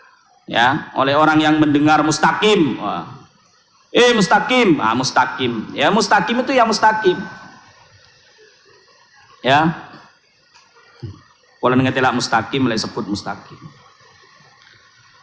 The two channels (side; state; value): both; identical; correlation 1.00